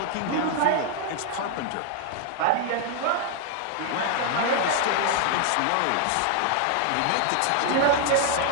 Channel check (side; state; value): both; different; correlation 0.00